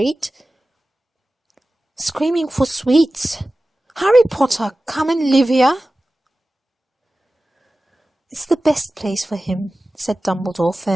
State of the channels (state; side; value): normal; both; correlation 0.96